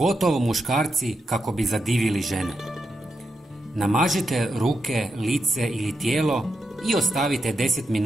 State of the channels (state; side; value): normal; both; correlation 0.86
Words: muškarci kako bi zadivili žene. Namažite ruke, lice ili tijelo i ostavite 10